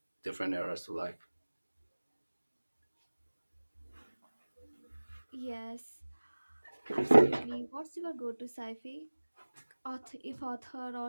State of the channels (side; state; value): both; inverted; correlation -1.00